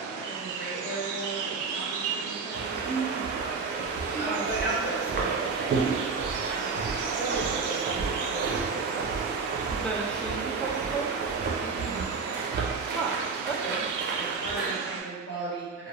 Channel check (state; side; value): quieter; left; 4.6 dB